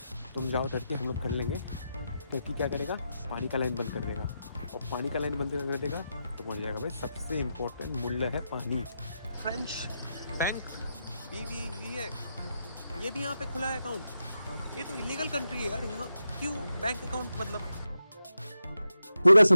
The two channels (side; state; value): both; inverted; correlation -0.87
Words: तुम जाओ टर्की, हम लोग कर लेंगे, टर्की क्या करेगा? पानी का लाइन बंद कर देगा, और पानी का लाइन बंद कर देगा तो पहुंच जाएगा भाई सबसे इम्पोर्टेंट मूल्य है पानी। फ्रेंच बैंक BBV है, ये भी यहाँ पे खुला है अकाउंट। ये तो इलीगल कंट्री है यार, यहाँ क्यों बैंक अकाउंट? मतलब पूरा